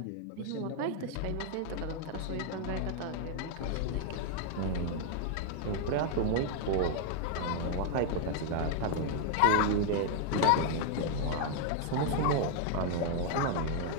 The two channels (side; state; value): both; different; correlation 0.01